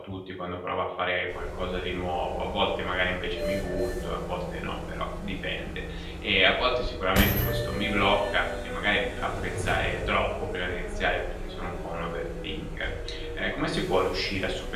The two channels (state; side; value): identical; both; correlation 1.00